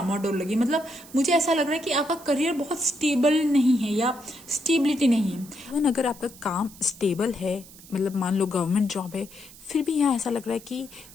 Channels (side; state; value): right; noise; hiss, 20 dB below the sound